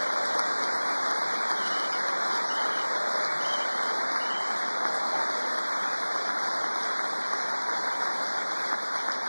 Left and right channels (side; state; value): both; inverted; correlation -1.00